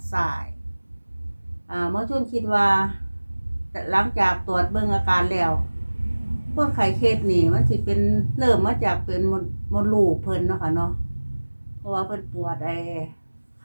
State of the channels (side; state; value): both; inverted; correlation -1.00